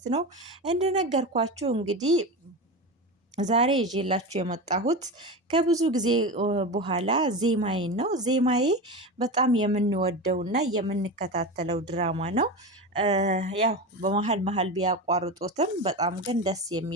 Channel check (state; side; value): normal; both; correlation 0.23